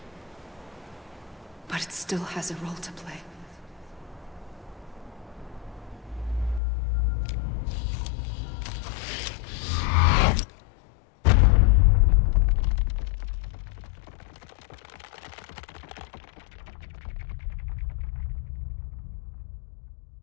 But it still has a role to play.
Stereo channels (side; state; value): right; drops out; at 6.6 s